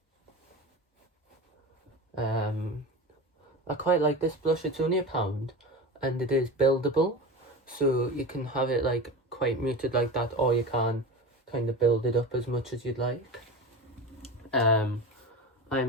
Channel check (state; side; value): normal; both; correlation 0.27